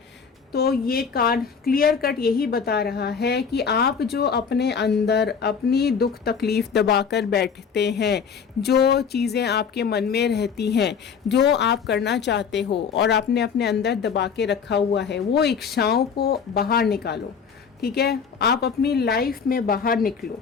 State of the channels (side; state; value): right; quieter; 6.4 dB